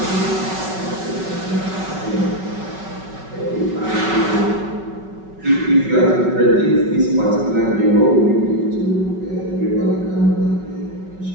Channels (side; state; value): left; late; 5.3 ms